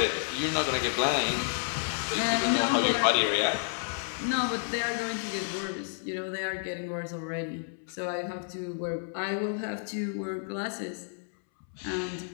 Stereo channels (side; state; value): right; silent; 58 dB below the other